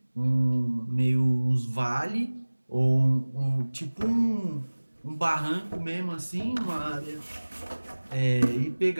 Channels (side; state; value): both; inverted; correlation -1.00